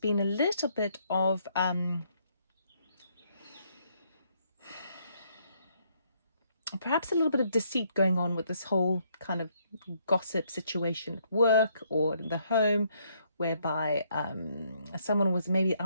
been a little bit of, perhaps a little bit of deceit going on with this whole kind of gossip situation at work or in the home, whereby someone was maybe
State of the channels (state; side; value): inverted; both; correlation -0.71